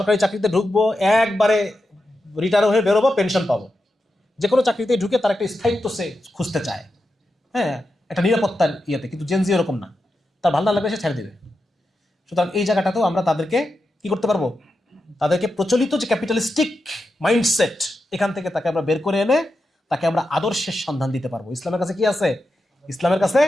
চাকরিতে ঢুকবো, একবারে রিটায়ার হয়ে বেরোবো, পেনশন পাবো, যে কোনো চাকরিতে ঢুকে তার একটা স্থায়িত্ব সে খুঁজতে চায়, একটা নিরাপত্তার ইয়েতে। কিন্তু জেন জি এরকম না, তার ভালো না লাগলে সে ছেড়ে দেবে। সুতরাং এই জায়গাটাতেও আমরা তাদেরকে কি করতে পারবো, তাদেরকে প্রচলিত যে ক্যাপিটালিস্টিক মাইন্ডসেট, এখান থেকে তাকে আমরা বের করে এনে তাকে আমরা আদর্শের সন্ধান দিতে পারবো। ইসলামের কাছে কি আছে? ইসলামের কাছে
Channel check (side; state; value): both; normal; correlation 0.89